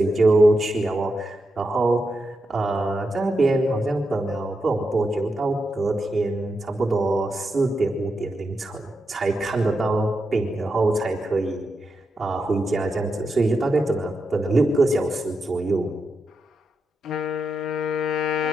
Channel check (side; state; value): both; normal; correlation 0.86